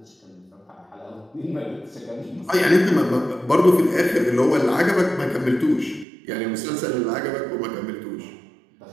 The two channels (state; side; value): drops out; left; at 6.1 s